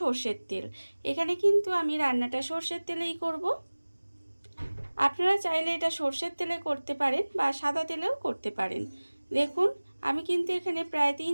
তেল। এখানে কিন্তু আমি রান্নাটা সর্ষের তেলেই করব। আপনারা চাইলে এটা সর্ষের তেলে করতে পারেন বা সাদা তেলেও করতে পারেন। দেখুন আমি কিন্তু এখানে প্রায়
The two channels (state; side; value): inverted; both; correlation -1.00